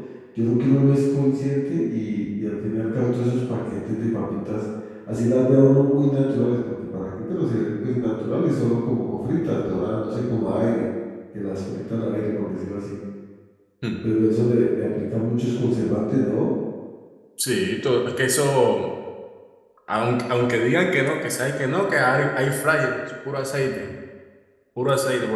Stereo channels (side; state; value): both; identical; correlation 1.00